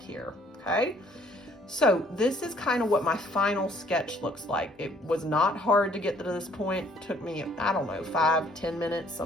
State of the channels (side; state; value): both; normal; correlation 0.61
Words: here, okay? So this is kind of what my final sketch looks like. It was not hard to get to this point. It took me, I don't know, 5-10 minutes,